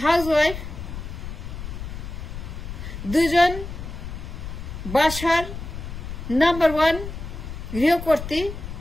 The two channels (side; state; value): left; noise; rumble, 8 dB below the sound